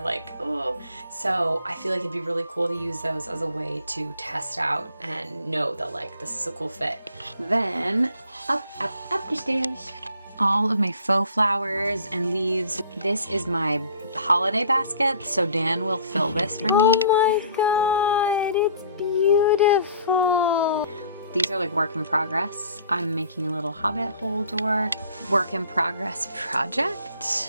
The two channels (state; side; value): inverted; both; correlation -0.52